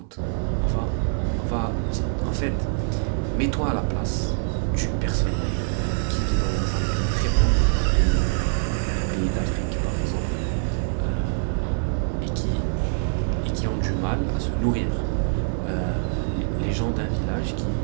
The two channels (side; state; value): left; silent; 62 dB below the other